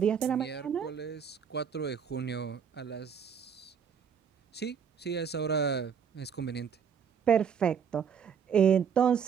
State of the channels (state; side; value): quieter; left; 7.2 dB